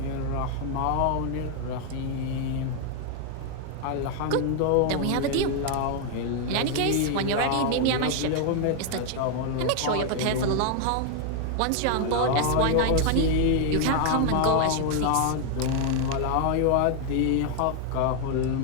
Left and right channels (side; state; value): both; different; correlation 0.00